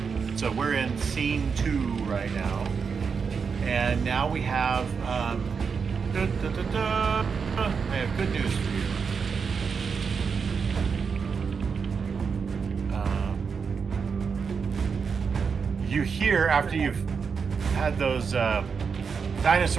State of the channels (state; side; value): quieter; left; 5.8 dB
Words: So we're in scene 2 right now. And now we have I have good news for you. You hear after you've had those